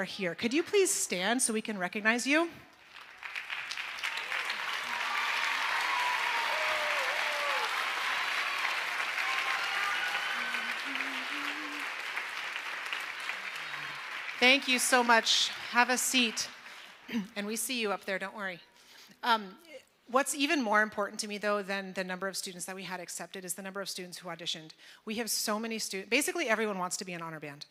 here. Could you please stand so we can recognize you? Thank you so much. Have a seat. And we see you up there, don't worry. What's even more important to me, though, than the number of students that we had accepted is the number of students who auditioned. We have so many students. Basically, everyone wants to be an honor band.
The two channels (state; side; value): identical; both; correlation 1.00